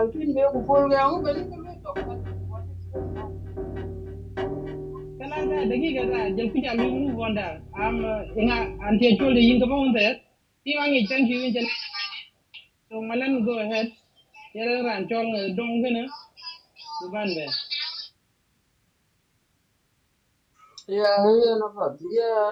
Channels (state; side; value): identical; both; correlation 1.00